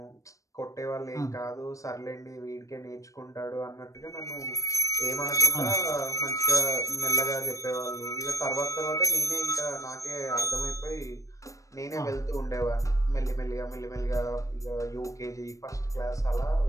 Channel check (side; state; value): right; late; 0.16 ms